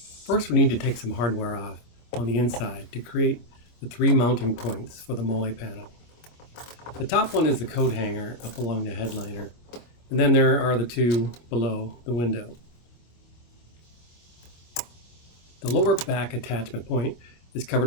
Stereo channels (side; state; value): right; late; 25 ms